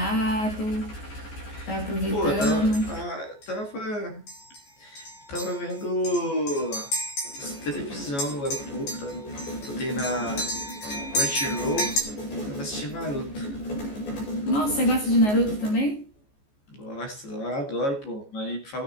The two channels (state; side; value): late; right; 14 ms